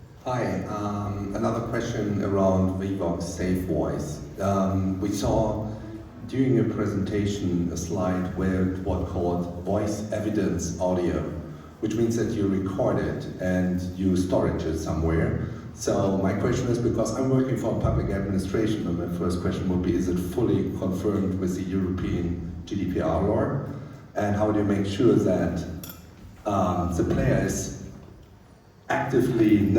Hi, another question around Vivox Safe Voice. We saw during your presentation a slide where it was called voice evidence audio, which means that you record it and you store it somewhere. So my question is, because I'm working for public administration, and my first question would be, is it fully confirmed with the European GDPR law? And how do you make sure that the player is actively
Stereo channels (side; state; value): both; identical; correlation 1.00